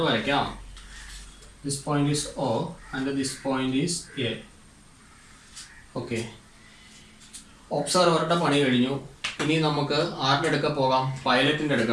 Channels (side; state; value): both; identical; correlation 1.00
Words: വരയ്ക്കാം. This point is O and this point is A. Okay, ഒബ്സർവറുടെ പണി കഴിഞ്ഞു. ഇനി നമുക്ക് ആരുടെ അടുക്ക പോകാം? പൈലറ്റിൻ്റെ